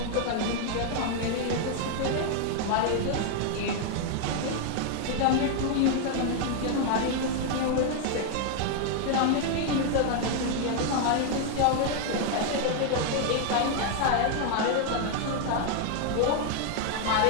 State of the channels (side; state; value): both; different; correlation 0.00